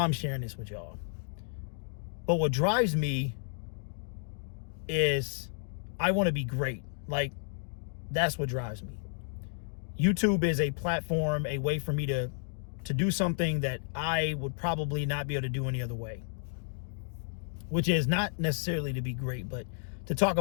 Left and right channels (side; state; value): right; silent; digital silence